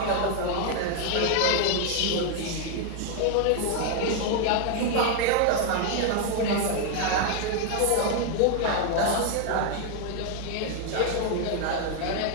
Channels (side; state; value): both; different; correlation 0.00